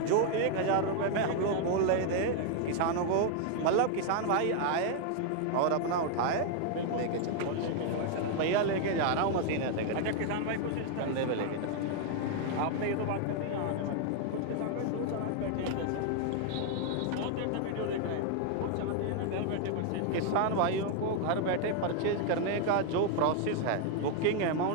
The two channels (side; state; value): both; different; correlation 0.00